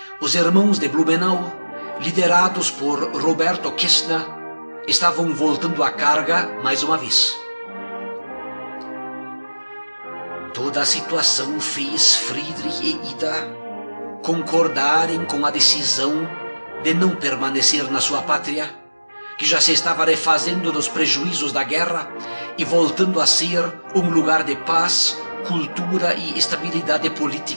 Os irmãos de Blumenau, liderados por Roberto Kästner, estavam voltando à carga mais uma vez. Toda a situação fez Friedrich e Ida concordarem com a decisão de não permanecer na sua pátria, que já se estava refazendo dos prejuízos da guerra e voltando a ser um lugar de paz, cultura e estabilidade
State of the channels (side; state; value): both; inverted; correlation -1.00